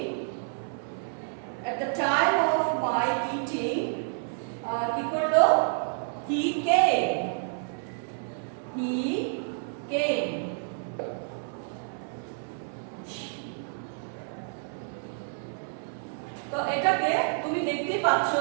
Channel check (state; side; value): silent; left; 58 dB below the other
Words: at the time of my eating, কি করলো? he came, তো এটাকে তুমি দেখতেই পাচ্ছ